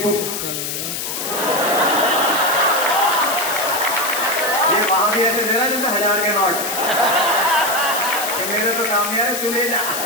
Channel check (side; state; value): left; noise; hiss, 4 dB below the sound